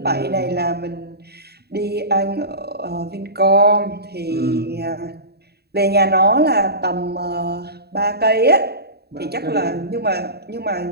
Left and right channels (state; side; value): late; left; 0.47 ms